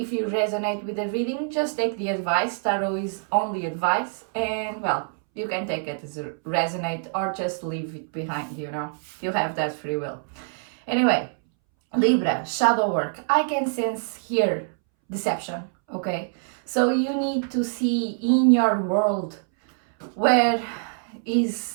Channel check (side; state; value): left; silent; 62 dB below the other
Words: you resonate with the reading, just take the advice. Tarot is only advice, and well, you can take it as a resonate or just leave it behind, you have that free will. Anyway, Libra, shadow work. I can sense here deception, okay? So you need to see in your world where